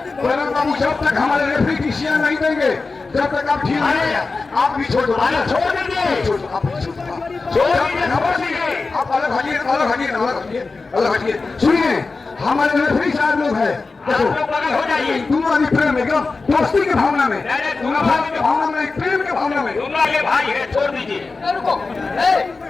बाबू जब तक हमारे रेफरी डिसीजन नहीं देंगे जब तक आप ठीक है आप भी छोड़ दो। छोड़ दीजिए, आप अलग हटिए, अलग हटिए, अलग हटिए, अलग हटिए। सुनिए हमारे रेफरी साहब लोग है, हो जाइए। दोनों आदमी प्रेम में एकदम दोस्ती के भावना में, भावना के भावना में, प्रेम के भावना में। दोनों आगे भाई है, छोड़ दीजिए।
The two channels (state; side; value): quieter; right; 4.0 dB